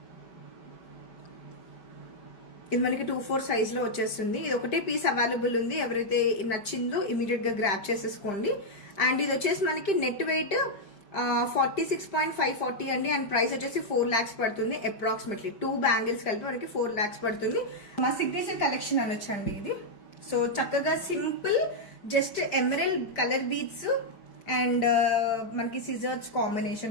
ఇది మనకి 2/4 సైజ్లో వచ్చేస్తుంది. ఇది ఒకటే పీస్ అవైలబుల్ ఉంది, ఎవరైతే నచ్చిందో ఇమీడియట్గా గ్రాప్ చేసేసుకోండి. అండ్ ఇది వచ్చేసి మనకి నెట్ వెయిట్ 46.540 అండి. అండ్ ప్రైస్ వచ్చేసి 4 lakhs పడుతుంది అప్రాక్సిమేట్లీ. 2 బ్యాంగిల్స్ కలిపి మనకి 4 lakhs పడుతుంది. మా సిగ్నేచర్ కలెక్షన్ అనొచ్చండి ఇది. సో చక్కగా simple, just emerald colour beads and మనకి సిజర్స్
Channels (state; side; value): late; right; 5.1 ms